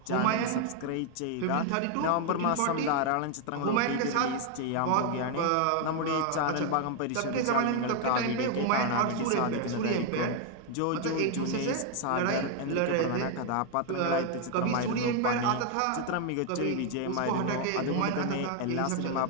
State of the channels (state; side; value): different; both; correlation 0.01